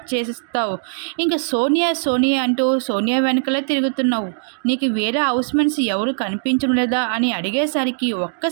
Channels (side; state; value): left; silent; digital silence